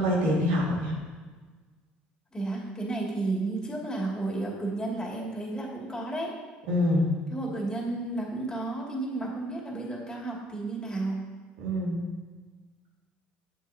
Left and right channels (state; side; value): normal; both; correlation 0.64